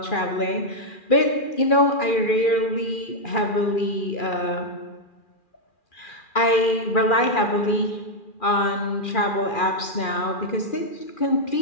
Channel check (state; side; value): late; right; 2.4 ms